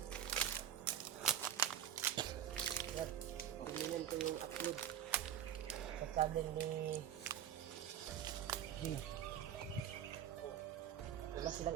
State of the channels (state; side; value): quieter; left; 10.1 dB